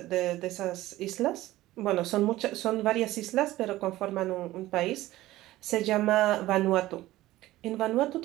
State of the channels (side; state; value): left; quieter; 16.4 dB